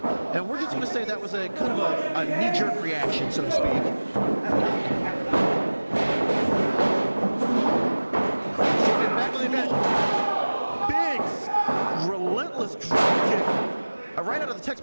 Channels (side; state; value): both; inverted; correlation -1.00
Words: And we're just going to say that was a kind of a knee-jerk reaction, so to speak. Sabian back on the advantage. Big, relentless drop kick. Right out of the